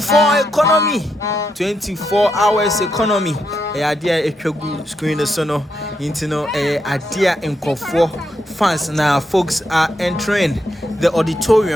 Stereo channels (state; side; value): normal; both; correlation 0.82